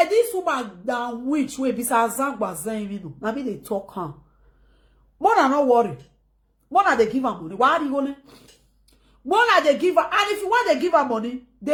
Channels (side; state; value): both; identical; correlation 1.00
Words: woman down which way besides Zangba Zen, you know, now me they talk her. More than not worry. More than they give her money. Why are you going? More than they give her, and if you want to give her money,